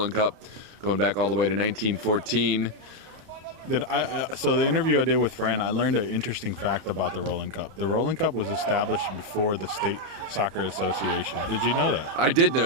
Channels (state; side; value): late; left; 30 ms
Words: Cup going back all the way to 1914. So the interview I did with Fran, I learned an interesting fact about the Roland Cup. The Roland Cup was established before the State Soccer Association. Did you know that? I did